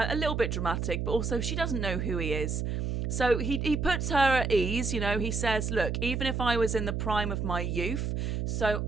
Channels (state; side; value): noise; right; hum, 1 dB below the sound